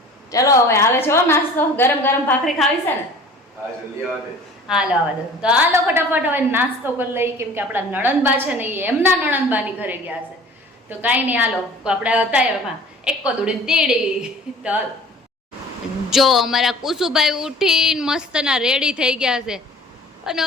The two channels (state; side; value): normal; both; correlation 0.46